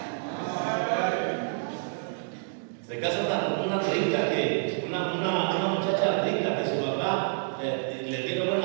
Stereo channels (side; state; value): left; silent; digital silence